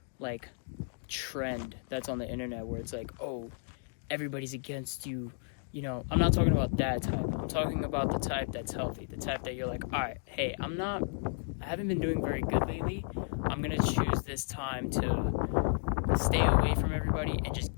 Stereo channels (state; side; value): silent; right; digital silence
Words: trend that's on the internet where it's like, oh, everybody's against you. You know, I'm not talking about that type. I'm talking about the type that's healthy, the type that you're like, all right, hey, I haven't been doing very good lately. I'm going to choose this time to stay away from everybody and just